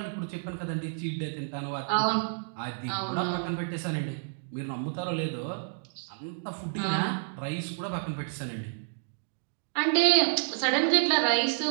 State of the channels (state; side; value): silent; left; digital silence